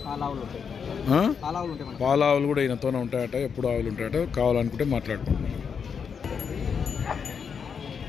పాలావులు కూడా ఈయనతోనే ఉంటాయట. ఎప్పుడు ఆవులు ఉంటాయట. కావాలనుకుంటే మాట్లాడుకుంటున్నాను.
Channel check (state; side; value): quieter; right; 6.5 dB